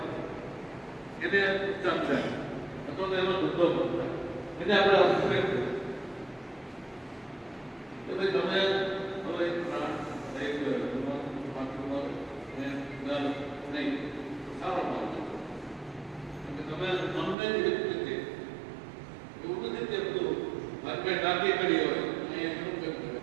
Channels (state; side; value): drops out; left; at 17.4 s